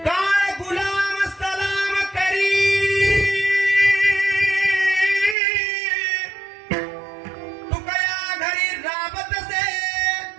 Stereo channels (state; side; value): drops out; left; at 5.4 s